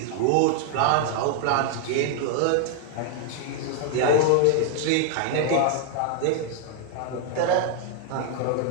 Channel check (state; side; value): different; both; correlation 0.00